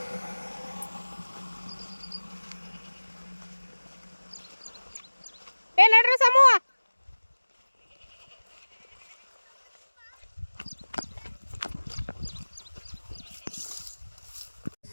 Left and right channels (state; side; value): inverted; both; correlation -1.00